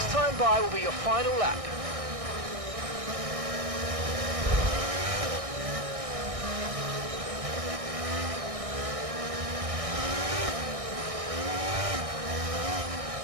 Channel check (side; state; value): left; late; 1.6 ms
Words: time by will be your final lap.